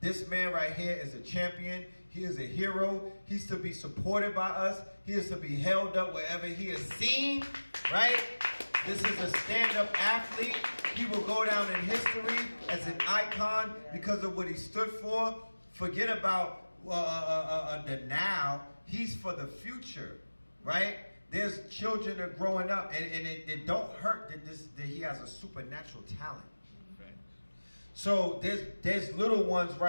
man right here is a champion. He is a hero. He's to be supported by us. He is to be held up wherever he is seen, right? This is a stand-up athlete. He will go down in history as an icon because of what he stood for. Forget about the now. He's for the future, right? There's children that are growing up, and it don't hurt that he has a supernatural talent. So there's little ones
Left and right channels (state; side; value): inverted; both; correlation -1.00